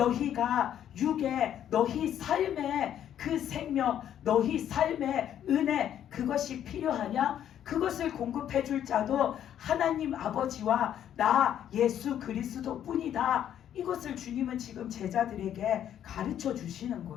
육에 너희 삶의 그 생명, 너희 삶의 은혜, 그것이 필요하냐? 그것을 공급해 줄 자도 하나님 아버지와 나 예수 그리스도 뿐이다. 이것을 주님은 지금 제자들에게 가르쳐 주시는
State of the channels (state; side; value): quieter; right; 10.3 dB